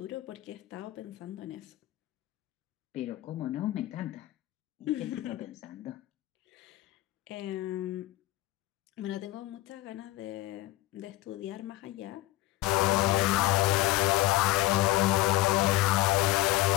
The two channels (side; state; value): right; quieter; 17.5 dB